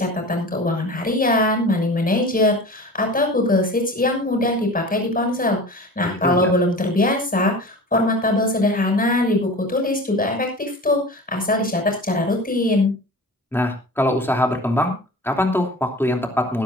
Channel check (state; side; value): normal; both; correlation 0.36